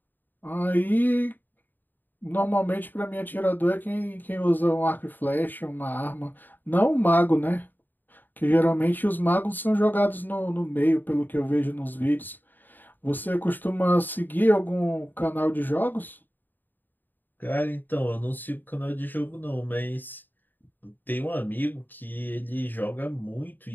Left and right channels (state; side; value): late; right; 0.090 ms